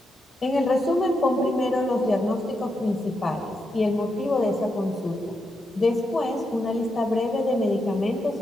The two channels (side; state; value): both; normal; correlation 0.84